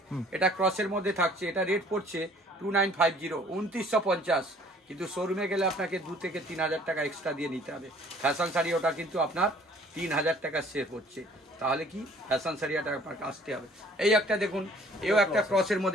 এটা ক্রসের মধ্যে থাকছে। এটা রেট পড়ছে 2950, 2950। কিন্তু শোরুমে গেলে আপনাকে 2 থেকে 3000 টাকা এক্সট্রা দিয়ে নিতে হবে। ফ্যাশন শাড়ি ওটা কিন্তু আপনার 3000 টাকা সেভ হচ্ছে। তাহলে কি ফ্যাশন শাড়িটা আপনাকে আসতে হবে। এই একটা দেখুন, এও একটা ক্রসের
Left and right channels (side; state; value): both; normal; correlation 0.55